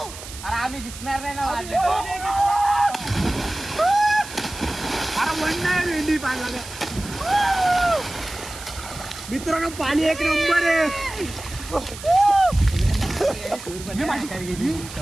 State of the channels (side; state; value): right; noise; hiss, 13 dB below the sound